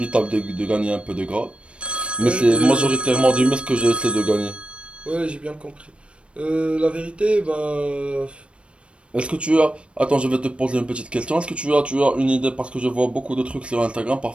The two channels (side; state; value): left; late; 0.059 ms